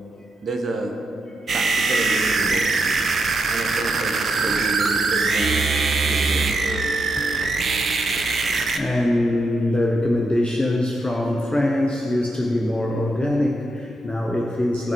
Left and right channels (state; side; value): normal; both; correlation 0.83